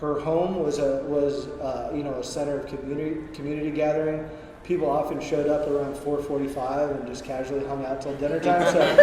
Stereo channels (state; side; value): identical; both; correlation 1.00